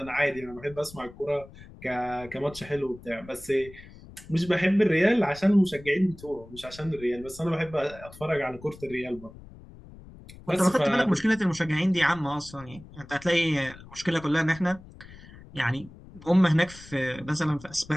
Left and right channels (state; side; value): noise; left; rumble, 19 dB below the sound